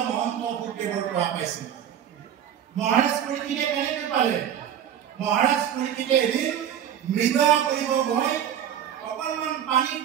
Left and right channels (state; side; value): quieter; left; 9.7 dB